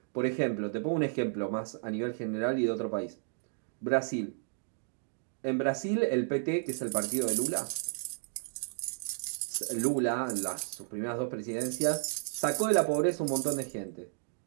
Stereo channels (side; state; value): left; silent; digital silence